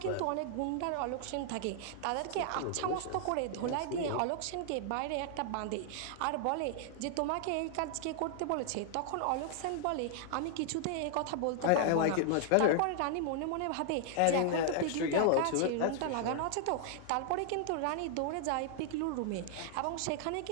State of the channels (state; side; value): different; both; correlation 0.00